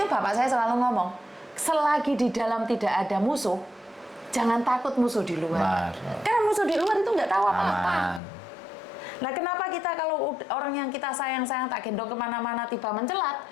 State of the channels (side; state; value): right; drops out; at 8.2 s